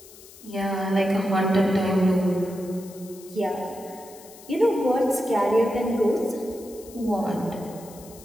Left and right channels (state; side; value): noise; left; hiss, 20 dB below the sound